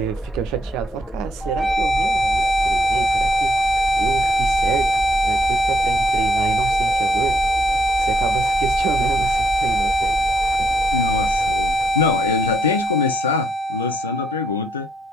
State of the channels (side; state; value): both; normal; correlation 0.74